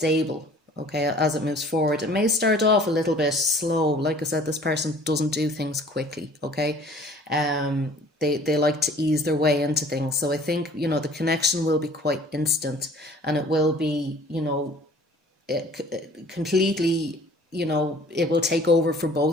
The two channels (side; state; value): both; normal; correlation 0.51